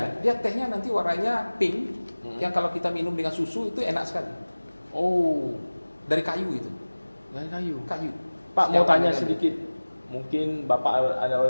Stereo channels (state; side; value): inverted; both; correlation -1.00